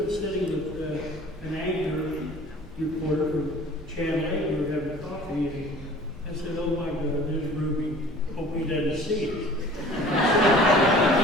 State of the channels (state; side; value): normal; both; correlation 0.47